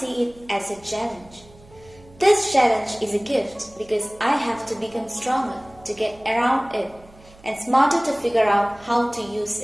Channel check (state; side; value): noise; right; hum, 25 dB below the sound